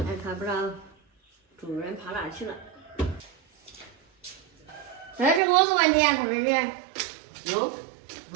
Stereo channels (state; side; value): drops out; left; at 5.4 s